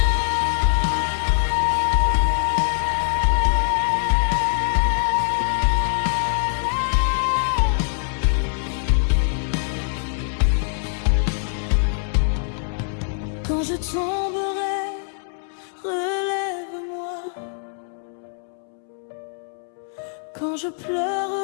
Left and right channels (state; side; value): silent; right; 63 dB below the other